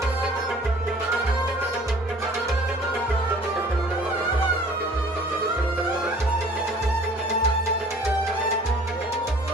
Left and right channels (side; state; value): both; normal; correlation 0.51